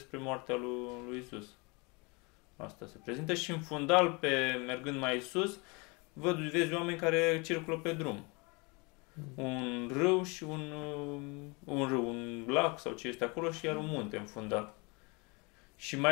moartea lui Iisus. Asta se prezintă și în fundal, mergând mai sus, vezi oameni care circulă pe drum. Un râu și un lac sau ce este acolo și iar un munte în fundal. Și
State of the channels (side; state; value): right; quieter; 28.7 dB